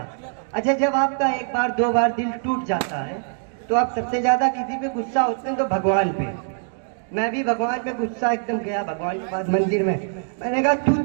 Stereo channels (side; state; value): left; silent; digital silence